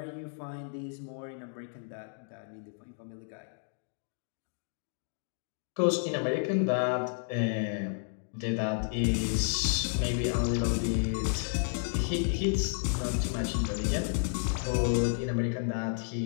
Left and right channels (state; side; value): silent; right; digital silence